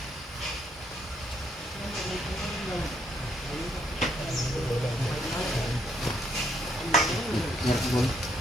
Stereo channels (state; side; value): normal; both; correlation 0.71